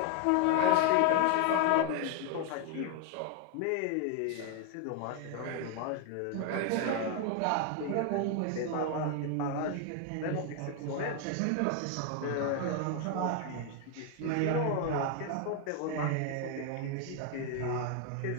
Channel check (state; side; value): different; both; correlation 0.01